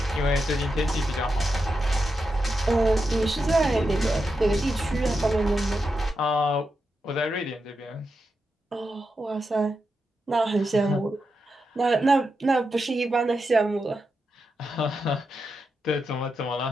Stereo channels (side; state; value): both; normal; correlation 0.87